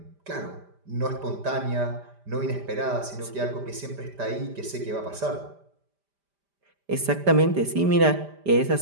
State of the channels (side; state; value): left; late; 5.0 ms